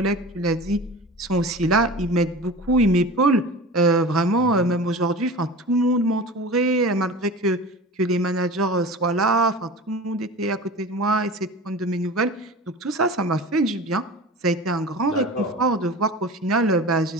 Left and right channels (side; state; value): both; normal; correlation 0.35